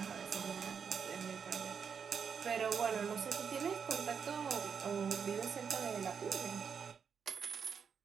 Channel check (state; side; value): quieter; left; 6.7 dB